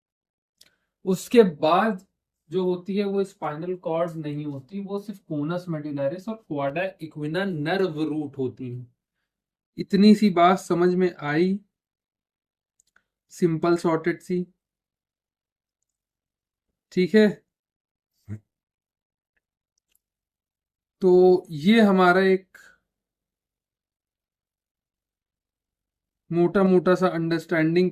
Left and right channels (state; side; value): identical; both; correlation 1.00